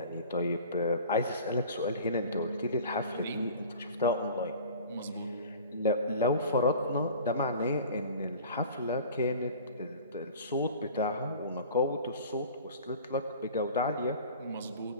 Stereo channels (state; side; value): inverted; both; correlation -0.42